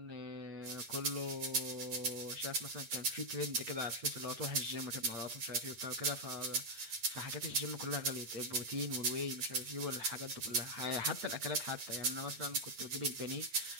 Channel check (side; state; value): left; late; 8.7 ms